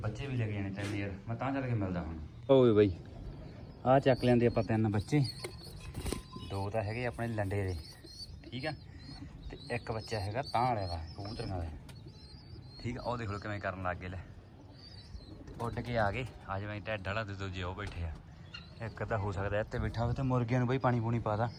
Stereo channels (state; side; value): identical; both; correlation 1.00